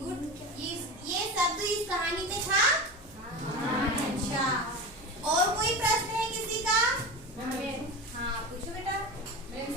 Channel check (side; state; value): both; normal; correlation 0.27